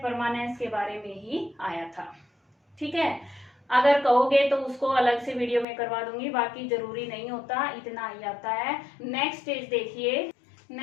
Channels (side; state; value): right; drops out; at 5.7 s